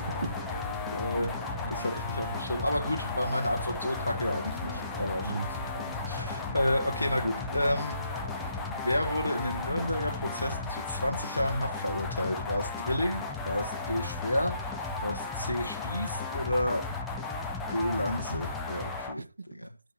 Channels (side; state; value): both; inverted; correlation -0.71